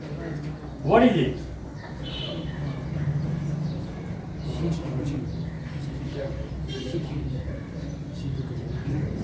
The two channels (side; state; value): both; identical; correlation 1.00